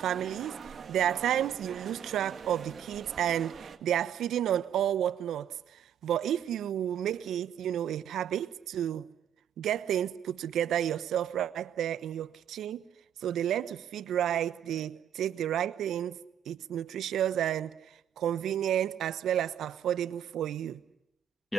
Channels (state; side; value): quieter; left; 9.9 dB